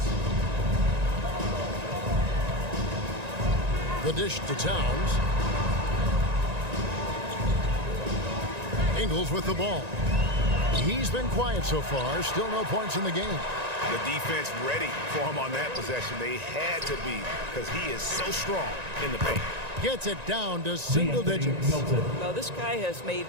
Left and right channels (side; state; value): left; late; 1.9 ms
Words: The dish to Towns. Ingles with the ball. He's been quiet so far. Still no points in the game. The defense ready for him on that possession. They had to be because he is so strong in the paint. Gets it down to single digits. Well, this guy has made